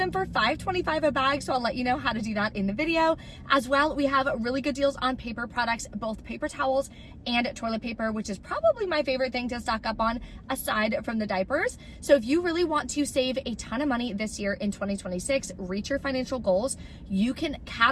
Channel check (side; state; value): both; identical; correlation 1.00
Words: for $5.25 a bag, so I'll let you know how to do that in the video. As well, we have really good deals on paper products, both paper towels and toilet paper, which is probably my favorite thing to stock up on aside from the diapers. So if you really want to save a ton of money this year in 2026, reach your financial goals, you can